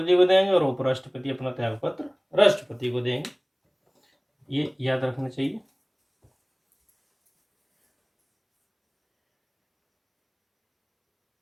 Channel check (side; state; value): both; identical; correlation 1.00